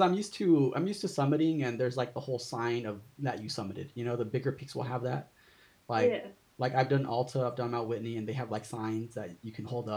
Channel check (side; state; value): both; identical; correlation 1.00